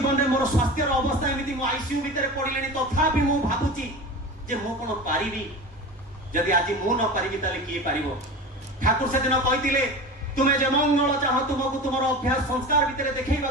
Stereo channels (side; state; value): both; normal; correlation 0.31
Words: में मोर स्वास्थ्य अवस्था एमती मो आईसीयू भितर पड़िले तथापि मु भाबुची जे मु कोन पारिबी जदि आज मु न पारिबी ताले किए पारिबो। ठाकुर से दिन कहितिले तुमे जे मंगल चाह तुमको तुमर अभ्यास संस्कार भितर देखैबा